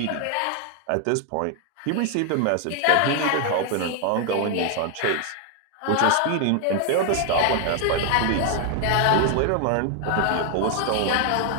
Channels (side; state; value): both; different; correlation 0.00